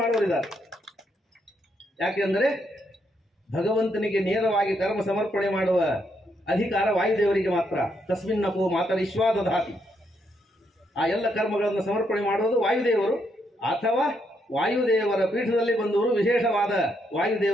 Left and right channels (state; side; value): normal; both; correlation 0.77